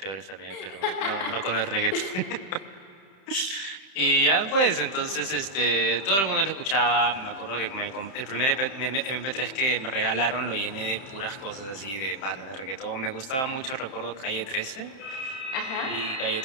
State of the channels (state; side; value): late; right; 31 ms